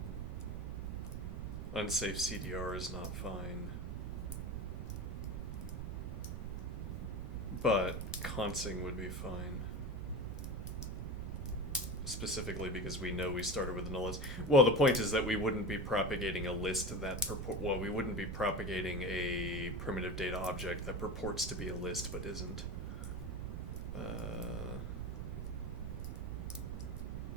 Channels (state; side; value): noise; right; rumble, 6 dB below the sound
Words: Unsafe CDR is not fine. But consing would be fine. Specifically because we know we started with a null list. Well, the point is that we wouldn't be propagating a list that well, we wouldn't be propagating a primitive data object that purports to be a list but isn't.